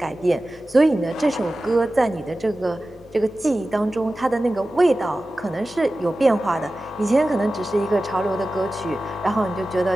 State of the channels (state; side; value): normal; both; correlation 0.95